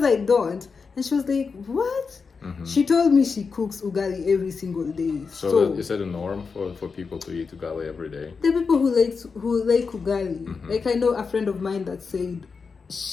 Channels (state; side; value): quieter; right; 5.1 dB